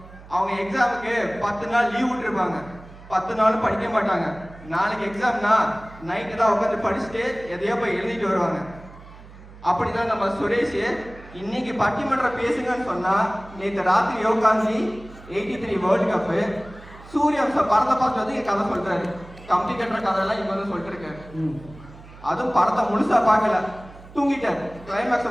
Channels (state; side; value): noise; right; hum, 19 dB below the sound